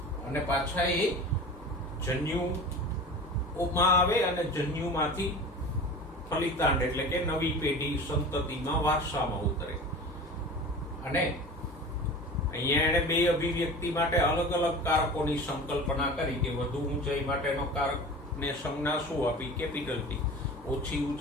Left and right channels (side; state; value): both; normal; correlation 0.36